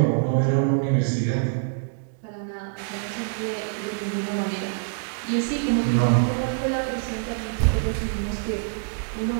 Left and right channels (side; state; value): left; silent; digital silence